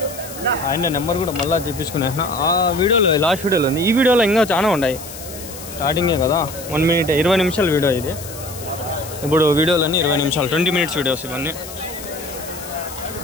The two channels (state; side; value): noise; left; hiss, 13 dB below the sound